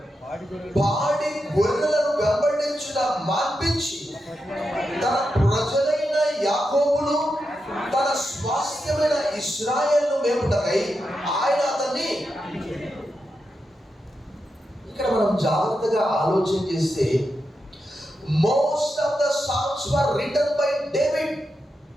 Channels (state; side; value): normal; both; correlation 0.87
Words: పాడి గొర్రెలను వెంబడించుట మాన్పించి తన ప్రజలైన యాకోబును తన స్వాస్థ్యమైన ఇశ్రాయేలును మేపుటకై ఆయన అతన్ని. ఇక్కడ మనం జాగ్రత్తగా ఆలోచన చేస్తే, most of the psalms were written by David.